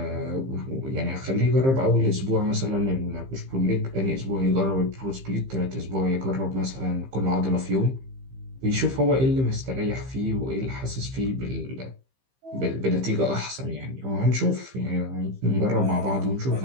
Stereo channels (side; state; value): left; late; 15 ms